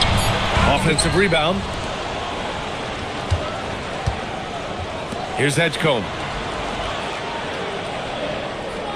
Offensive rebound. Here's Edgecombe.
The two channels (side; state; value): both; identical; correlation 1.00